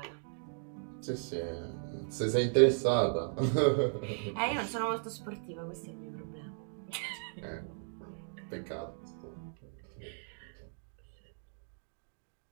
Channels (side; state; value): left; silent; digital silence